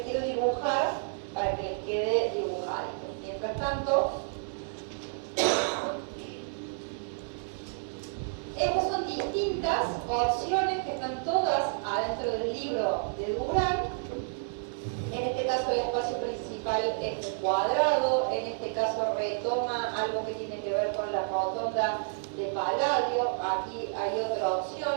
quiero dibujar para que les quede dibujado. Mientras tanto, estas son distintas opciones que están todas adentro del libro de Durán. En este caso el espacio principal es cuadrado, en este caso retoma algo que tiene que ver con la rotonda de Palladio, aquí hay otra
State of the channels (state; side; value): silent; left; 58 dB below the other